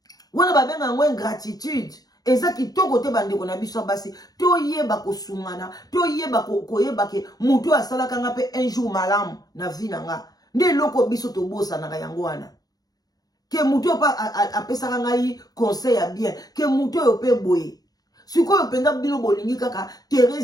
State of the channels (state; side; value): late; right; 0.18 ms